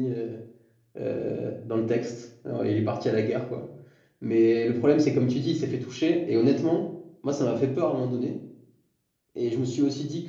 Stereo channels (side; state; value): both; identical; correlation 1.00